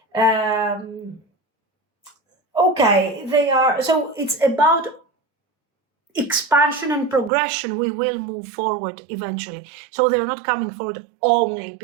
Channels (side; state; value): left; drops out; at 7.3 s